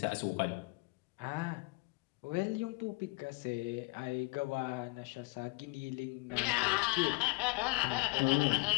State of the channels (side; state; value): right; quieter; 25.5 dB